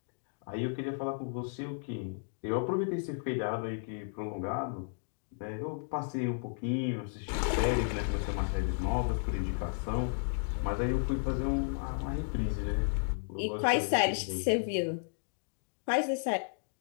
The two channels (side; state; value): right; silent; digital silence